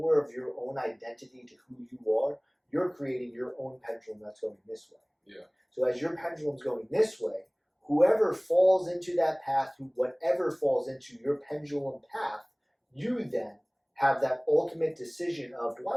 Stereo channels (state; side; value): identical; both; correlation 1.00